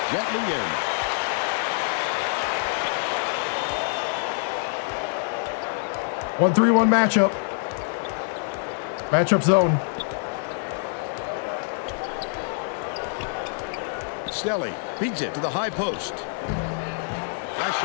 gently in. One 3-1 matchup. Matchup zone. Stelly beats it to the high post. Last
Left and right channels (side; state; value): right; silent; 61 dB below the other